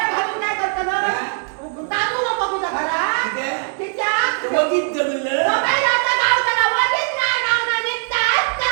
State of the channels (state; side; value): silent; left; 62 dB below the other